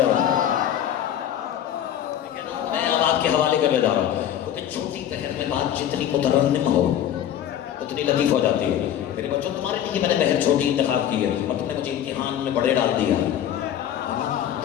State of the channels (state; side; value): quieter; right; 10.5 dB